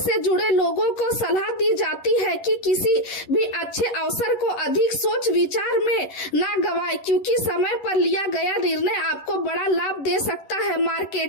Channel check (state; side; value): late; right; 11 ms